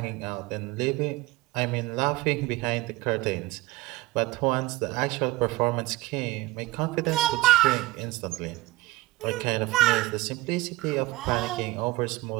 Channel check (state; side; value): quieter; left; 19.4 dB